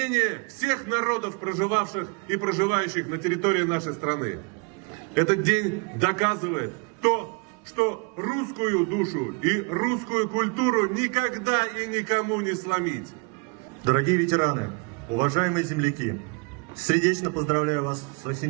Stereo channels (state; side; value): quieter; left; 32.7 dB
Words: всех народов, проживавших и проживающих на территории нашей страны. Этот день доказывает то, что русскую душу и русскую культуру никогда и никому не сломить. Дорогие ветераны, уважаемые земляки, сердечно поздравляю вас с